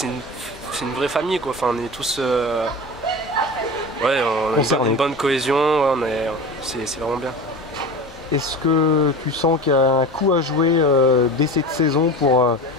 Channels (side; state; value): both; normal; correlation 0.31